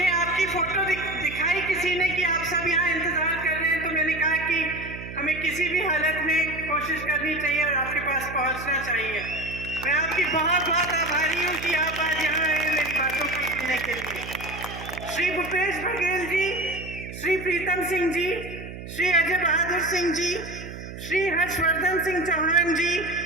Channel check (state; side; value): noise; right; hum, 11 dB below the sound